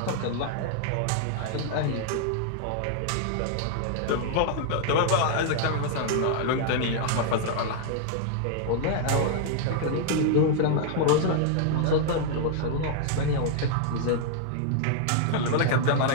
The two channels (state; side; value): different; both; correlation -0.01